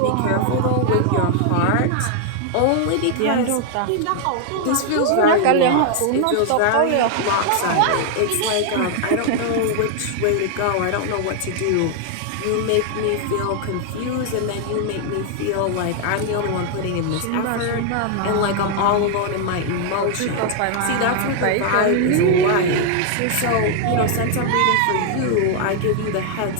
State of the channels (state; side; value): different; both; correlation 0.00